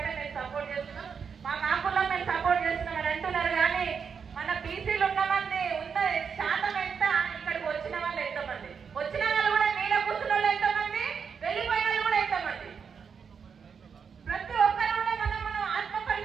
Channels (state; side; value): quieter; left; 6.4 dB